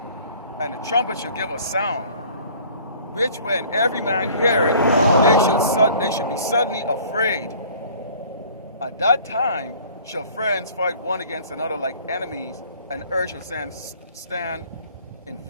and the trumpet shall give a sound, which when every man hear it, they should be suddenly afraid. At that time shall friends fight one against another like enemies, and earth shall stand in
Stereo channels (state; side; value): inverted; both; correlation -0.51